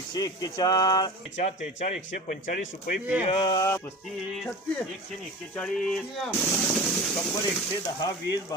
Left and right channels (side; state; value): both; normal; correlation 0.33